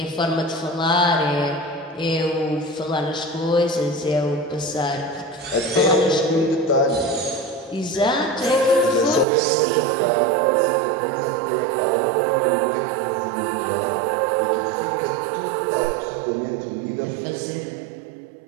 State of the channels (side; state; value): left; drops out; at 9.2 s